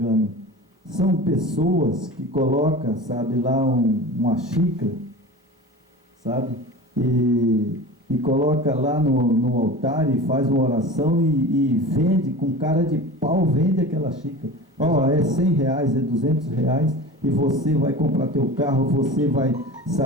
São pessoas que colocam, sabe, lá uma xícara, sabe? E coloca lá no altar e faz uma oração e vende, com cara de pau, vende aquela xícara. Ó, é 100 reais, é 200 reais, e você vai comprar teu carro, você vai,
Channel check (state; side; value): normal; both; correlation 0.34